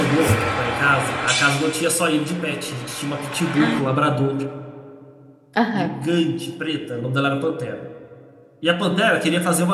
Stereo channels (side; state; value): both; identical; correlation 1.00